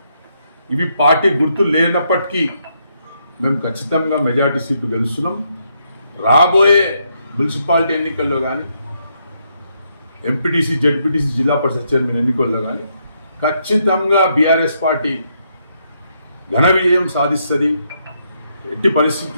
ఇవి పార్టీ గుర్తు లేనప్పటికీ మేము ఖచ్చితంగా మెజార్టీ సీట్లు గెలుస్తున్నాం. రాబోయే మున్సిపాలిటీ ఎన్నికల్లో కానీ ఎంపీటీసీ జెడ్పీటీసీ జిల్లా పరిషత్ చైర్మన్ ఎన్నికల్లో కానీ ఖచ్చితంగా బీఆర్ఎస్ పార్టీ ఘన విజయం సాధిస్తుంది. ఎట్టి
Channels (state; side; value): inverted; both; correlation -0.77